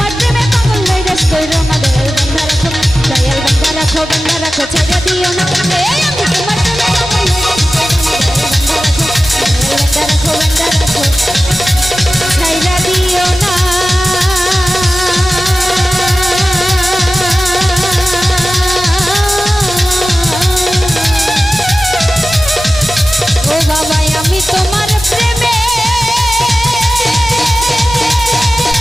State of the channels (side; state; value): both; normal; correlation 0.95